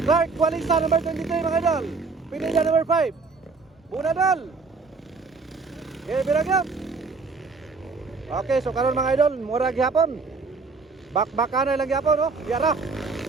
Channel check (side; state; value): left; quieter; 4.4 dB